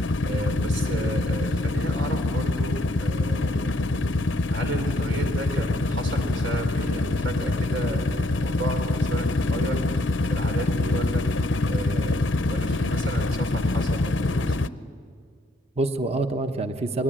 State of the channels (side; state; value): both; normal; correlation 0.69